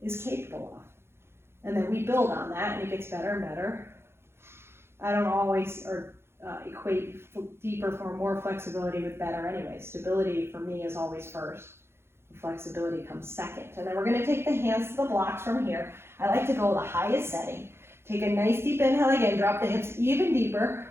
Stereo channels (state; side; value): late; left; 0.12 ms